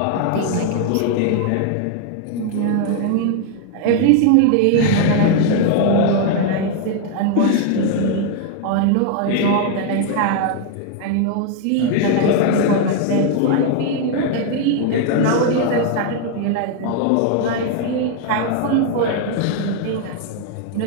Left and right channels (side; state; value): both; different; correlation 0.00